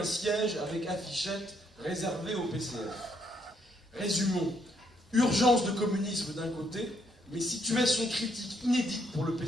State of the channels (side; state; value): both; normal; correlation 0.72